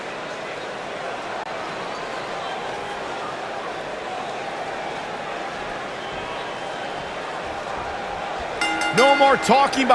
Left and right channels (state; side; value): identical; both; correlation 1.00